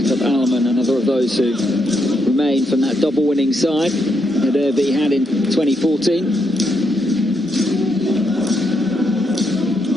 Jakob Alman, another of those who remain from that double winning side that AaB had in 2014.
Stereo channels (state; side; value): normal; both; correlation 0.79